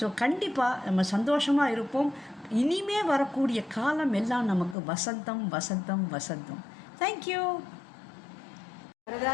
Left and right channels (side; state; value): right; drops out; at 4.8 s